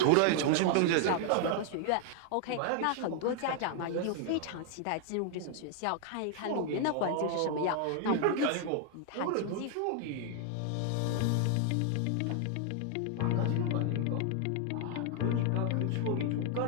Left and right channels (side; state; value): both; different; correlation 0.00